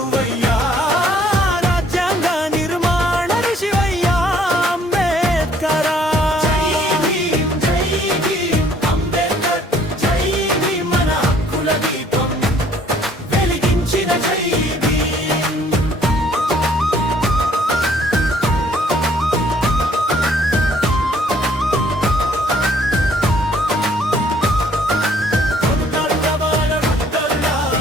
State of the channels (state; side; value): normal; both; correlation 0.61